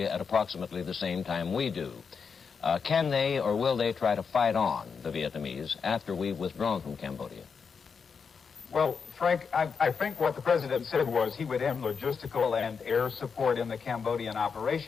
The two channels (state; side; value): quieter; right; 5.9 dB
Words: at approximately the same time we do. Can they or will they try to fight on, the Vietnamese, after we've withdrawn from Cambodia? Well, Frank, I think what the president said was he would end logistical and air support in the Cambodian